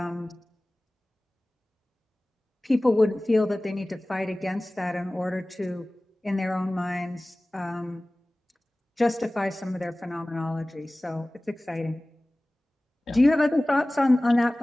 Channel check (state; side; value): normal; both; correlation 0.98